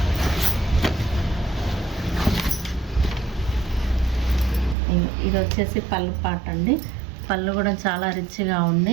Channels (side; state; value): left; drops out; at 4.8 s